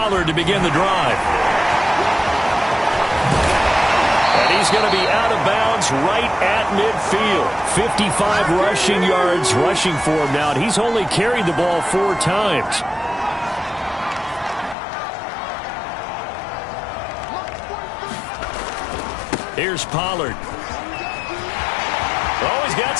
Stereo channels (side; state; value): right; drops out; at 14.8 s